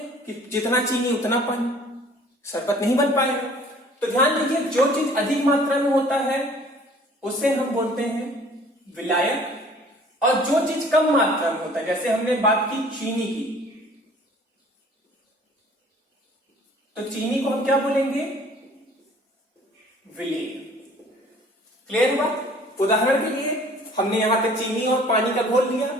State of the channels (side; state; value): both; normal; correlation 0.52